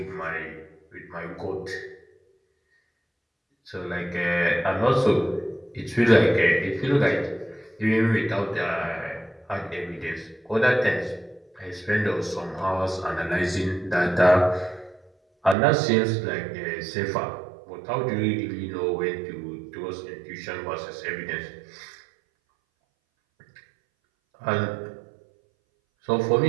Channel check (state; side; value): drops out; left; at 15.6 s